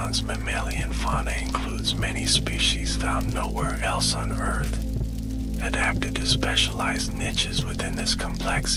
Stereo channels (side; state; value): both; identical; correlation 1.00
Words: mammalian fauna includes many species found nowhere else on Earth, adapted to specialized niches within this